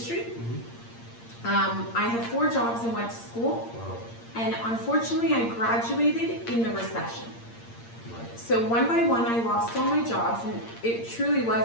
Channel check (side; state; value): right; late; 8.7 ms